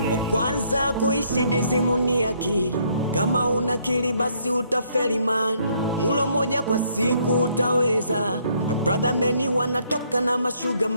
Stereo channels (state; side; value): inverted; both; correlation -0.68